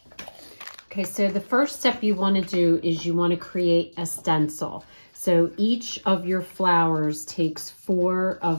Okay, so the first step you want to do is you want to create a stencil. So each of your flowers takes 4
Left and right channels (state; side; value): inverted; both; correlation -1.00